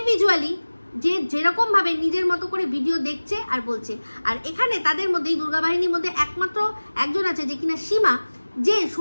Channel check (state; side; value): inverted; both; correlation -1.00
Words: যেরকম ভাবে নিজের মতো করে ভিডিও দেখছে আর বলছে। আর এখানে তাদের মধ্যে, দুর্গা বাহিনীর মধ্যে একমাত্র একজন আছে যে কিনা সীমা, যে